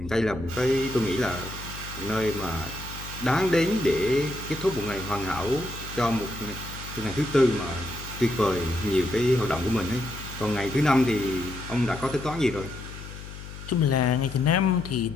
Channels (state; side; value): noise; left; hum, 12 dB below the sound